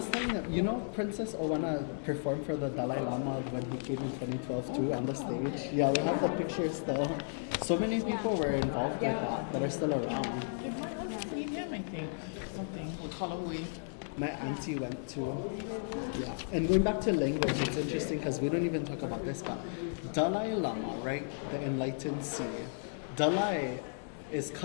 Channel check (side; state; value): right; silent; digital silence